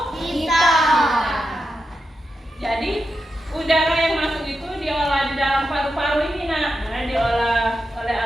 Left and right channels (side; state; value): both; normal; correlation 0.88